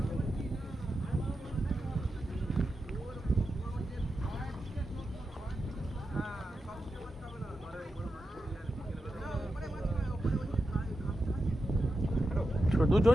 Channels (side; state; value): both; normal; correlation 0.90